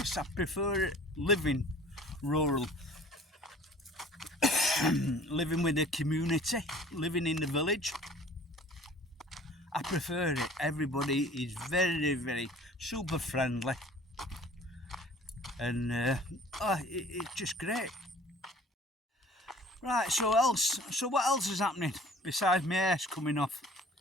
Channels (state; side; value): normal; both; correlation 0.49